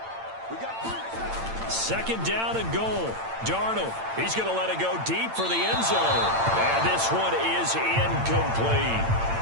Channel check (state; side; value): late; left; 8.8 ms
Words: 2nd down and goal. Darnold, he's going to let it go deep for the end zone. And this one is incomplete.